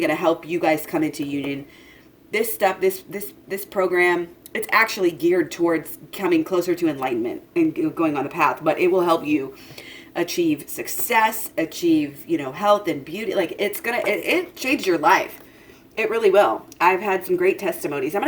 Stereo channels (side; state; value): both; identical; correlation 1.00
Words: to help you guys come into union, this stuff, this program, it's actually geared towards coming closer to enlightenment and going on the path, but it will help you achieve success, achieve, you know, health and beauty. Like it changed your life. It really will. I've had some great testimonies. I'm